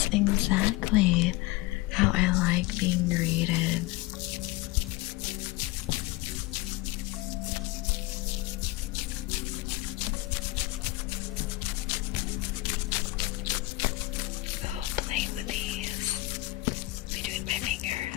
exactly how I like being greeted. Oh, play with these between my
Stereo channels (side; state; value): right; quieter; 20.2 dB